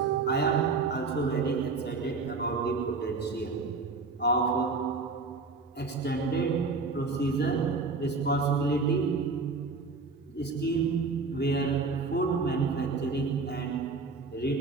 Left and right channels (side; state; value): left; quieter; 4.1 dB